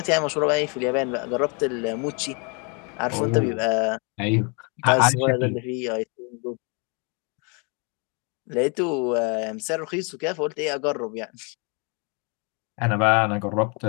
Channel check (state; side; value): quieter; right; 34.0 dB